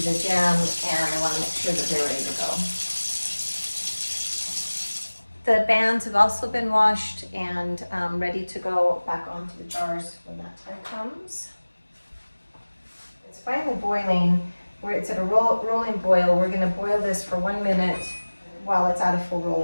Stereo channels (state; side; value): inverted; both; correlation -1.00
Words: jam, and I want to make sure that they're ready to go. The bands have also been washed and ready to go back onto the jars when that time comes. It's finally boiling. It's at a rolling boil. We're going to boil this for 1 minute while it's at a full